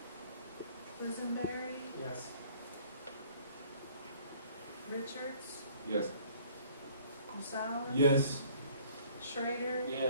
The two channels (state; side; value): inverted; both; correlation -0.57